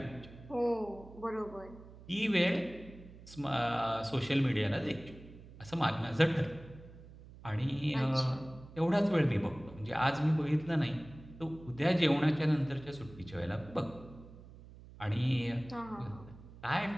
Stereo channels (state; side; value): noise; right; hum, 18 dB below the sound